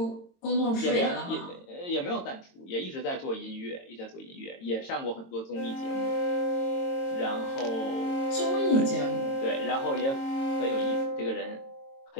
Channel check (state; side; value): late; right; 22 ms